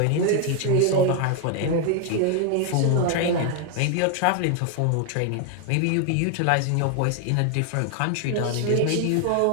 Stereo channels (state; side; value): different; both; correlation 0.01